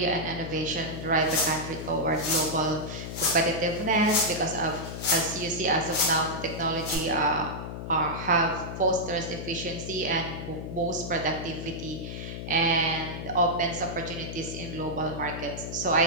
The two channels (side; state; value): left; noise; hum, 7 dB below the sound